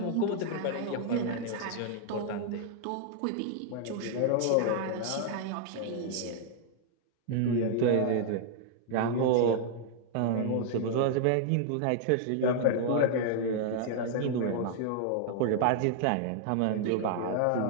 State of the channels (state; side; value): different; both; correlation 0.00